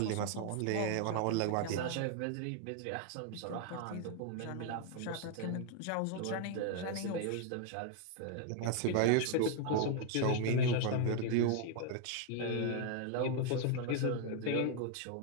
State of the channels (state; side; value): different; both; correlation 0.00